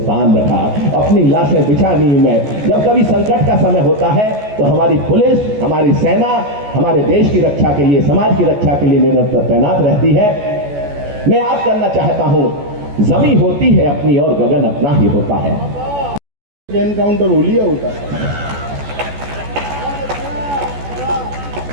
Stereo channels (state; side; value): late; left; 14 ms